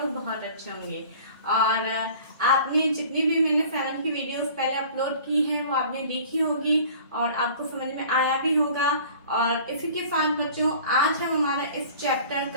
लोग बहुत अच्छे होंगे। और आपने जितनी भी मैंने 7 की वीडियोस पहले अपलोड की है वो आपने देखी होगी और आपको समझ में आया भी होगा। और इसी के साथ बच्चों, आज हम हमारा इस चैप्टर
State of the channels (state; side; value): inverted; both; correlation -0.46